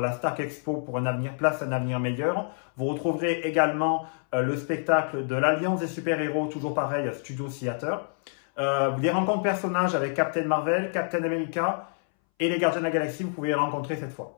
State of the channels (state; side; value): silent; right; 60 dB below the other